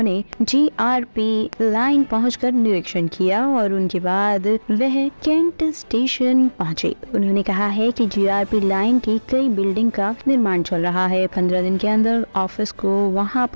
जीआरपी लाइन पहुंचकर निरीक्षण किया और उनके बाद वह कैंट स्टेशन पहुंचे। उन्होंने कहा है कि जीआरपी लाइन की कई बिल्डिंग का निर्माण चल रहा है। 15 दिन के अंदर ऑफिस को वहां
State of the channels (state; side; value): inverted; both; correlation -1.00